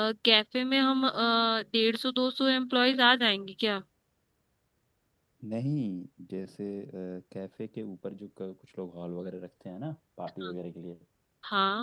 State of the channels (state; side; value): identical; both; correlation 1.00